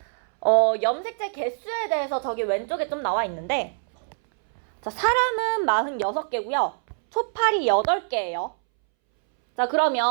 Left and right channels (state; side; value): silent; left; 62 dB below the other